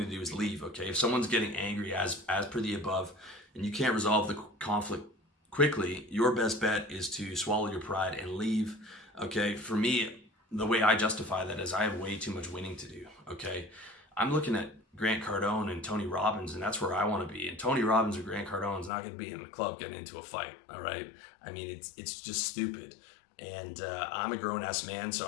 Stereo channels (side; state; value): right; drops out; at 18.9 s